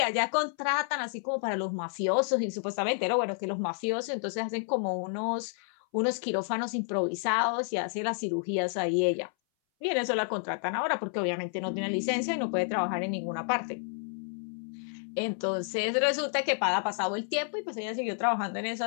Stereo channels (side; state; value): right; silent; 58 dB below the other